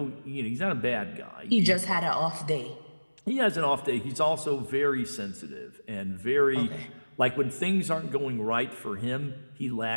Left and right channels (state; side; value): inverted; both; correlation -1.00